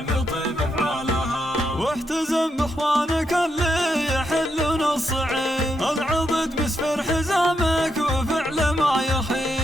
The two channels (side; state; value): both; normal; correlation 0.81